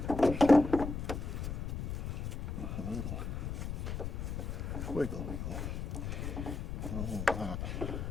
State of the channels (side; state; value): left; noise; rumble, 4 dB below the sound